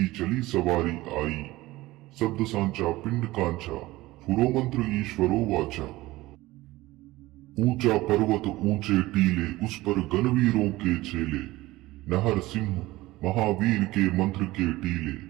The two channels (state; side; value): quieter; left; 18.6 dB